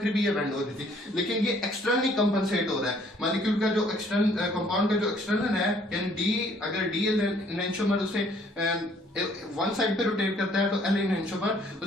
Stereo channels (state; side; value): normal; both; correlation 0.61